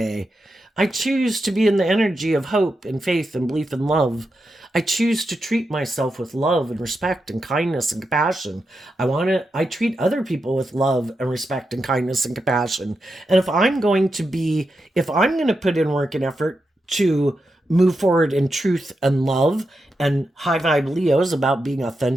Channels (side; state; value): both; normal; correlation 0.87